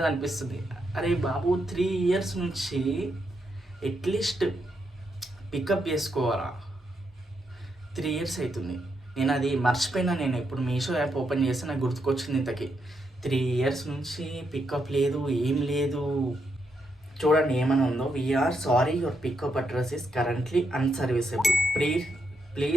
అనిపిస్తుంది. అరే బాబు, 3 years నుంచి అట్లీస్ట్ పికప్ చేసుకోవాలా? 3 years అవుతుంది. నేను అది మర్చిపోయినా. నేను ఇప్పుడు మీషో యాప్ ఓపెన్ చేస్తే నాకు గుర్తుకొచ్చింది. ఇంతకీ 3 years నుంచి పికప్ లేదు, ఏం లేదు. చూడండి ఏమైనా ఉందో. We're sorry, your pickup address is currently unserviceable,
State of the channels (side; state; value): both; normal; correlation 0.81